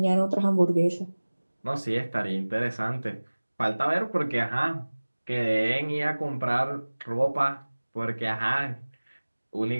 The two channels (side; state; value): both; inverted; correlation -1.00